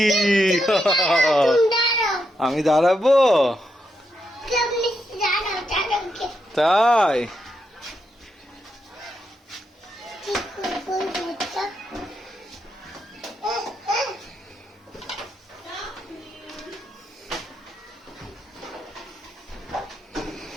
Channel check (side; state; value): both; normal; correlation 0.83